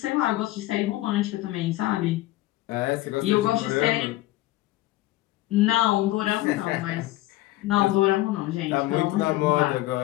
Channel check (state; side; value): quieter; right; 17.1 dB